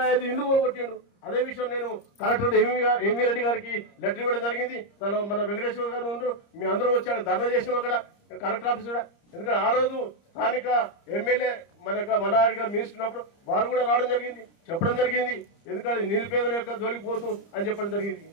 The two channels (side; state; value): right; late; 30 ms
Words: ఇల్లు కూలగొట్టిండు. అదే విషయం నేను కలెక్టర్ ఎంవి రెడ్డి గారికి లెటర్ ఇవ్వడం జరిగింది. మన వెంకటేశ్వర గారు ఉండు మీ అందరం వచ్చాడు ధర్నా చేసినాం అక్కడ కలెక్టర్ ఆఫీస్ కూడా. ఎందుకంటే ఆ రోజు స్థానిక ఎమ్మెల్యే మల్లారెడ్డి గారు మినిస్టర్ ఉన్నప్పుడు వారు కూడా రావడం జరిగింది, చెప్పడం జరిగింది. ఎందుకంటే నిరుపేదల యొక్క జోలికి పోతూ అని చెప్పడం జరిగింది.